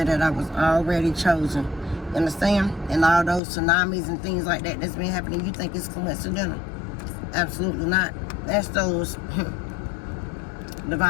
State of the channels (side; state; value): right; drops out; at 3.4 s